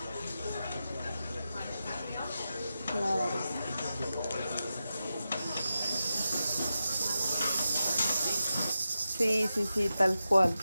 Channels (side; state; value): both; inverted; correlation -0.90